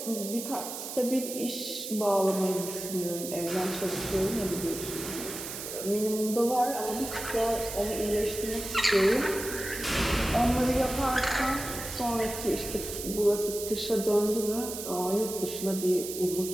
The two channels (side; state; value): right; noise; hiss, 8 dB below the sound